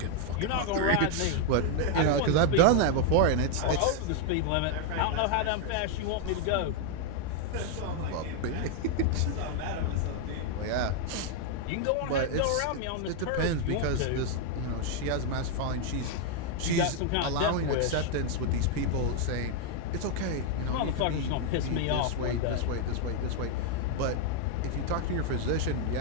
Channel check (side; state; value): both; different; correlation 0.00